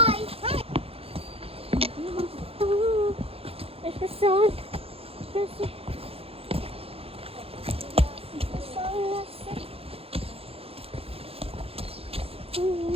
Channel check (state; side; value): late; left; 0.28 ms